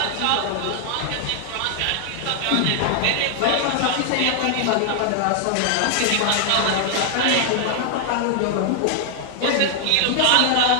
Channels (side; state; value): both; different; correlation 0.00